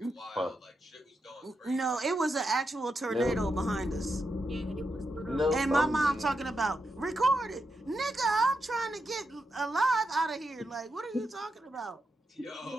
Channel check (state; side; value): normal; both; correlation 0.85